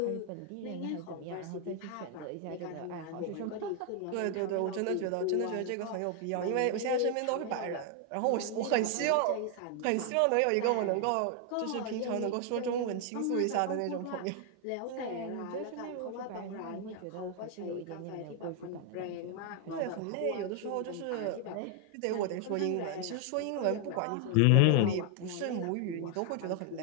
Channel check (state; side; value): different; both; correlation 0.00